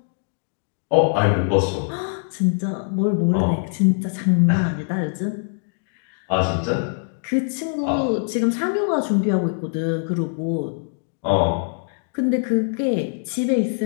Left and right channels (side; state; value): right; silent; digital silence